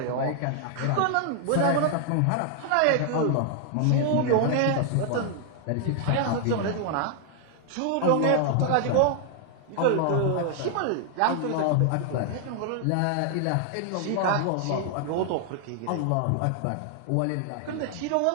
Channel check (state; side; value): different; both; correlation 0.00